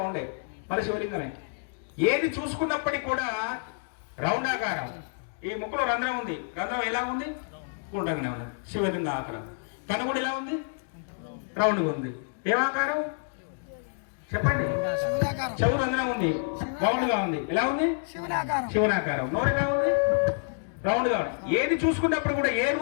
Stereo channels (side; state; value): right; silent; digital silence